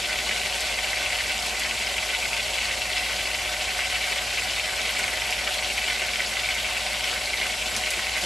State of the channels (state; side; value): normal; both; correlation 0.90